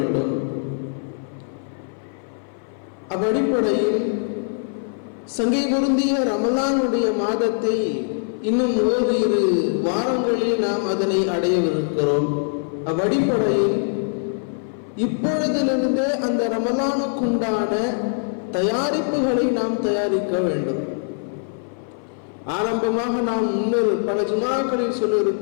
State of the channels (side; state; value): right; silent; 58 dB below the other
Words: அவ்வடிப்படையில் சங்கை பொருந்திய ரமலானுடைய மாதத்தை இன்னும் ஓரிரு வாரங்களில் நாம் அதனை அடையவிருக்கிறோம். அவ்வடிப்படையில் இப்பொழுதிலிருந்தே அந்த ரமலானுக்குண்டான தயாரிப்புகளை நாம் தயாரிக்க வேண்டும். ஆரம்பமாக நாம் முன்னர் பல ஜுமாக்களில்